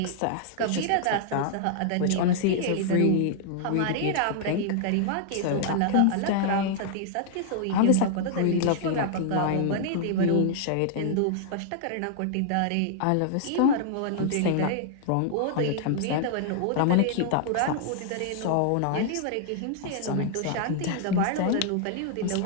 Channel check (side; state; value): both; different; correlation -0.01